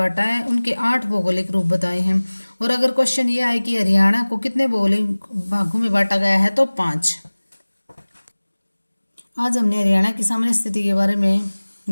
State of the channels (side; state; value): both; inverted; correlation -1.00